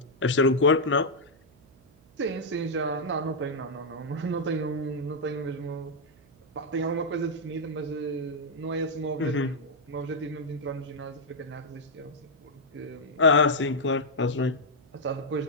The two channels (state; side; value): noise; right; hum, 29 dB below the sound